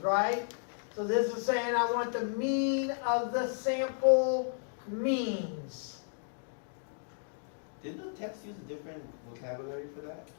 right? So this is saying I want the mean of the sample means. Did the text use a different vocabulary for that?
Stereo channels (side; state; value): right; silent; digital silence